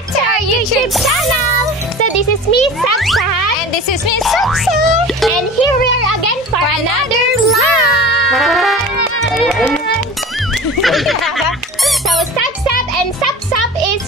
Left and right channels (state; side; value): normal; both; correlation 0.36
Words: to our YouTube channel. So this is me, Saksa, and this is me, Saksa, and here we are again for another vlog. So Sapsap and Sapsap is